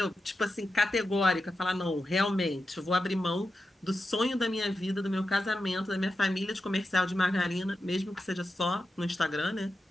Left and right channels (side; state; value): both; normal; correlation 0.90